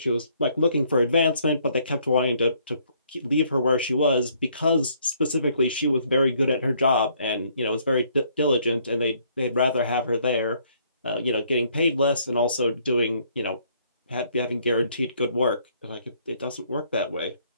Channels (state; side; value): inverted; both; correlation -0.66